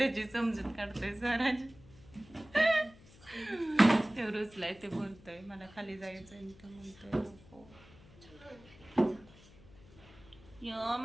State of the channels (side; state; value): left; noise; hum, 23 dB below the sound